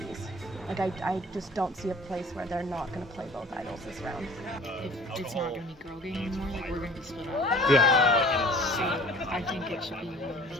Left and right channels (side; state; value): both; normal; correlation 0.48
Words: Like, I just don't see a place where they're not going to play both idols this round. If it's not going to be girl game anymore, like, we're going to be split up. Yeah. So I think it should be